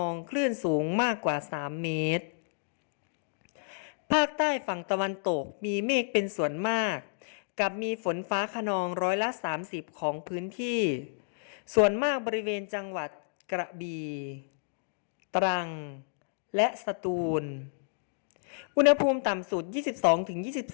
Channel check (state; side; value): silent; right; digital silence